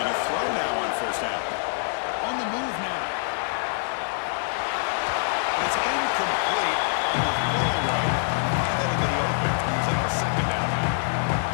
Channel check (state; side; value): silent; right; 61 dB below the other